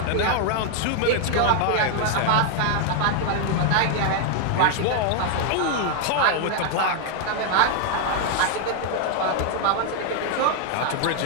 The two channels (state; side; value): different; both; correlation 0.00